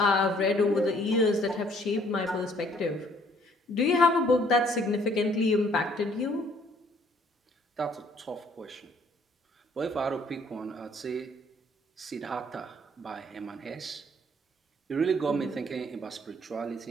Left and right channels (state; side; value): normal; both; correlation 0.61